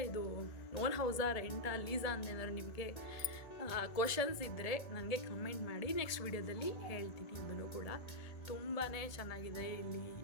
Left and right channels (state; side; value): late; right; 1.7 ms